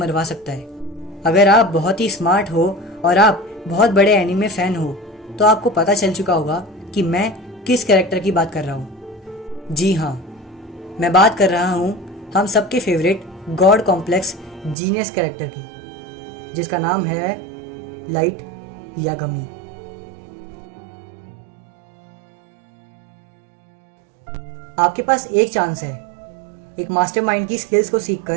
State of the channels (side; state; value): left; drops out; at 14.8 s